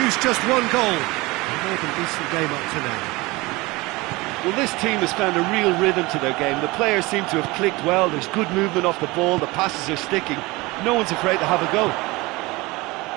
just one goal. A more than decent game up to now. Well, this team has found a real rhythm to their game. The players seem to have clicked well. There's good movement off the ball. The passes are sticking. No one's afraid to have a go.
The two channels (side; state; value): left; quieter; 22.5 dB